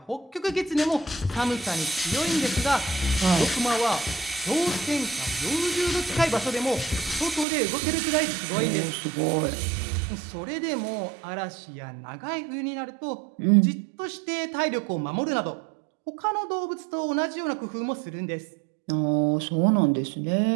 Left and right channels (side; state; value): left; drops out; at 7.5 s